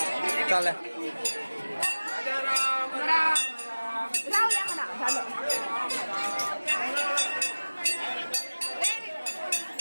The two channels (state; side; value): inverted; both; correlation -1.00